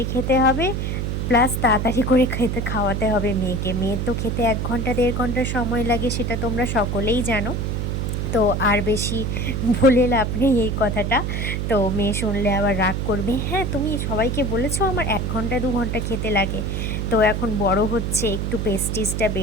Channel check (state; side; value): noise; right; hum, 1 dB below the sound